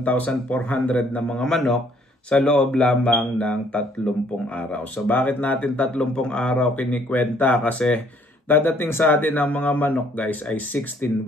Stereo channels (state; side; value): normal; both; correlation 0.63